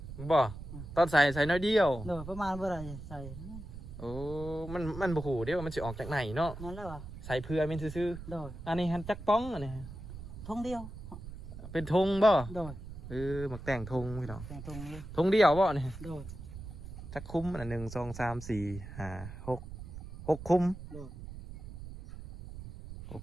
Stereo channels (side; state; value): right; noise; rumble, 11 dB below the sound